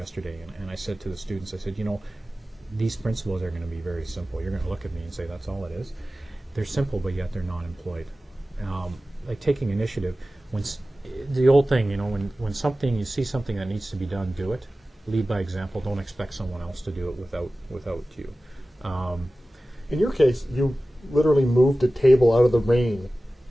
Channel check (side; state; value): both; normal; correlation 0.96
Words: and I said to the students, I said, you know, these principles are going to be very simple. You're going to look at me and say, that's all it is. They're simple, but yet they're not employed. Like taking initiative, the old thing, you know, when you see something that needs to be done, do it. Lead by example. Don't expect someone else to do it without you. In your case, you literally moved a table out of the rain,